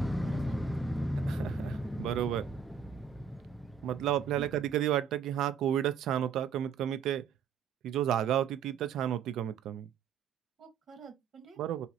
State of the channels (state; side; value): quieter; left; 6.9 dB